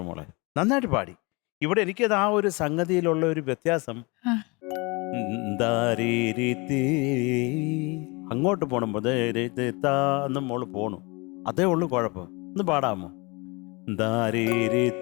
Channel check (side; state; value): right; quieter; 27.6 dB